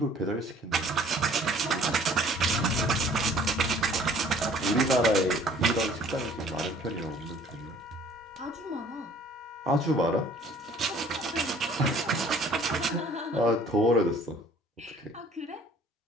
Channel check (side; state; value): both; normal; correlation 0.54